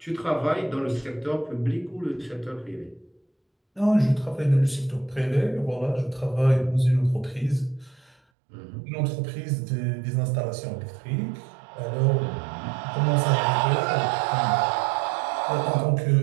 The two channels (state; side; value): drops out; left; at 8.2 s